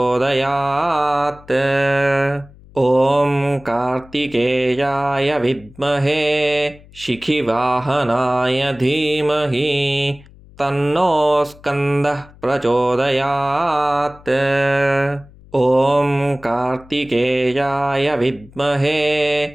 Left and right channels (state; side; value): noise; left; hum, 23 dB below the sound